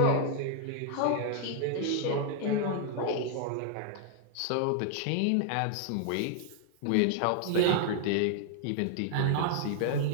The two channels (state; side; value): different; both; correlation 0.00